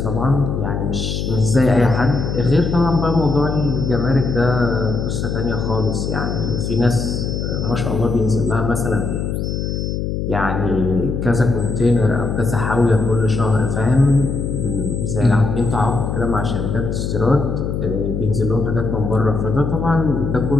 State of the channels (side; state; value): left; noise; hum, 2 dB below the sound